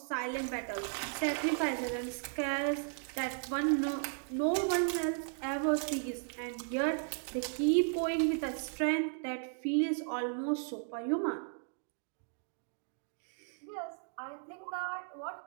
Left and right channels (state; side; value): silent; left; 54 dB below the other